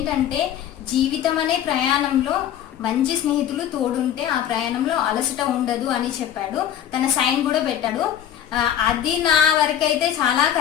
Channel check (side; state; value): right; quieter; 10.4 dB